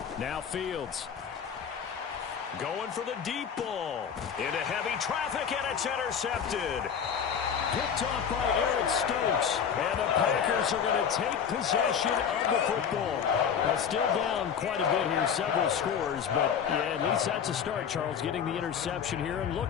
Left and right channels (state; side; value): quieter; right; 7.5 dB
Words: Now Fields. Going for the deep ball. Into heavy traffic, and it's intercepted. Picked off by Eric Stokes. And the Packers are going to take possession of the football. Now still down quite a bit here, several scores, but yeah, at least that's a start, Charles, getting the interception here. And